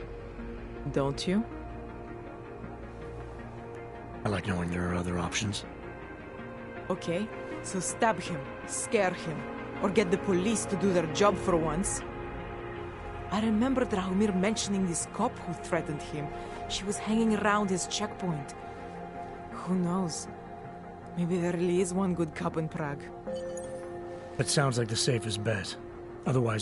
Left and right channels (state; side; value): identical; both; correlation 1.00